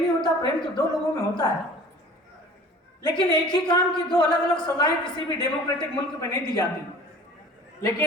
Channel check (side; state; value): both; normal; correlation 0.45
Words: होता, प्रेम तो 2 लोगों में होता है। लेकिन एक ही काम की 2 अलग अलग सजाएं किसी भी डेमोक्रेटिक मुल्क में नहीं दी जाती।